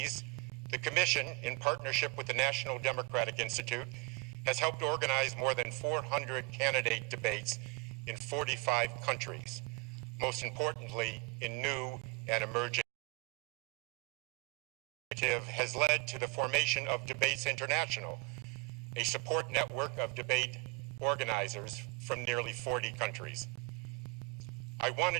the Commission, in partnership with the National Democratic Institute, has helped organize more than 400 candidate debates in 45 countries, most importantly in new and emerging. Has led to the formation of Debates International, a support network of debate organizers from nearly 40 countries. I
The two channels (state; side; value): quieter; left; 29.5 dB